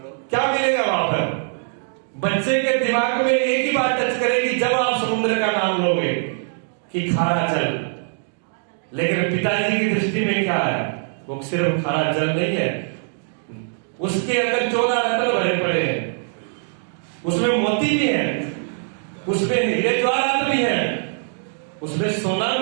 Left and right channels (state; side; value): silent; left; 64 dB below the other